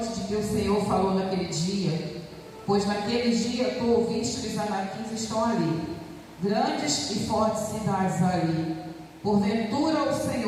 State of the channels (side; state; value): both; identical; correlation 1.00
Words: de que o Senhor falou naquele dia, pois naquele dia tu ouviste que os anaquins estão ali, grandes e fortes cidades ali. Porventura o